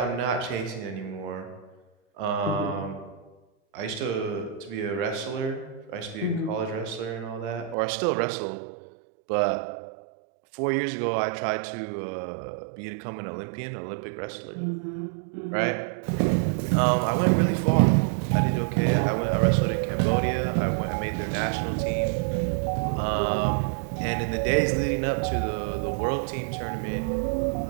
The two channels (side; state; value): left; drops out; at 7.8 s